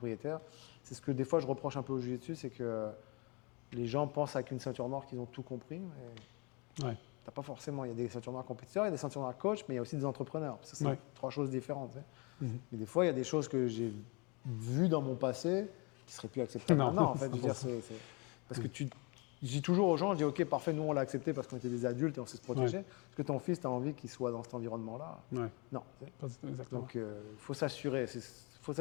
C'est ce que, des fois, je reproche un peu au jiu-jitsu, c'est que les gens pensent avec une ceinture noire qu'ils ont tout compris. Mais Ouais. t'as pas forcément. Il y a des ceintures noires compétiteurs, il y a des ceintures noires coach, mais il y a aussi des entrepreneurs. Ça, c'est 3 choses différentes. Tu sais. Mais des fois, il y a des choses que j'ai vues dans mon passé qui seraient plus acceptables Non, maintenant. En fait, je veux dire, c'est parce que je dis toujours aux gens, je dis ok, parfait, nous on l'a accepté parce qu'on était des adultes et on sait se protéger. Est-ce que ton fils, tu as envie qu'il soit dans cet environnement-là? Ouais. Non. Tu sais. Exactement. Donc, il faut s'assurer. Il faut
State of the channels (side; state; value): right; quieter; 30.3 dB